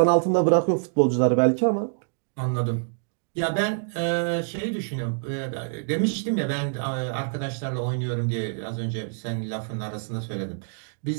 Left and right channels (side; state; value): left; silent; digital silence